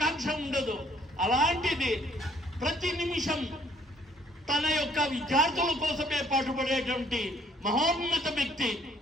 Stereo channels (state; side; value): normal; both; correlation 0.63